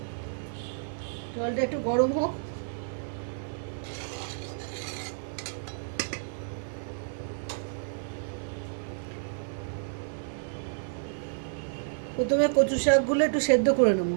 জলটা একটু গরম হোক। প্রথমে কচু শাকগুলো একটু সেদ্ধ করে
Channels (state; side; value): silent; left; 58 dB below the other